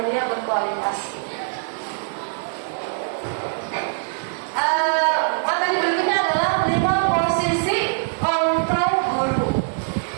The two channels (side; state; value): left; silent; digital silence